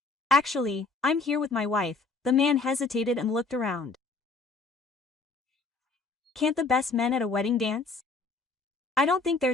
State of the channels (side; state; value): right; quieter; 3.9 dB